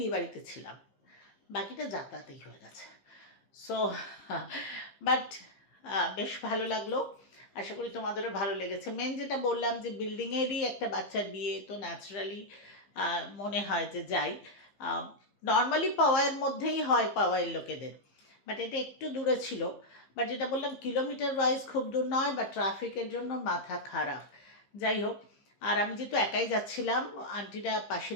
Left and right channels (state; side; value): late; right; 15 ms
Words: বাড়িতে ছিলাম, বাকিটা যাতায়াতেই হয়ে গেছে। সো বাট বেশ ভালো লাগলো, আশা করি তোমাদেরও ভালো লেগেছে। মেন যেটা বললাম যে বিল্ডিংয়েরই একটা বাচ্চার বিয়ে, তো ন্যাচারালি মনে হয় যে যাই। নর্মালি পাওয়াইয়ের মধ্যেই হয় পাওয়াইয়ের লোকেদের, বাট এটা একটু দূরে ছিল। বাট যেটা বললাম কিলোমিটার ওয়াইজ খুব দূর নয়, বা ট্রাফিকের জন্য মাথা খারাপ। যাই হোক, আর আমি যেহেতু একাই যাচ্ছিলাম, আন্টিরা